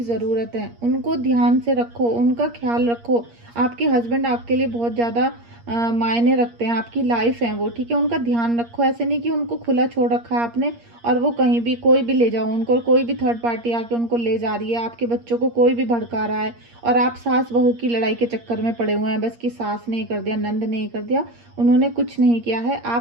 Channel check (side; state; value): left; late; 8.5 ms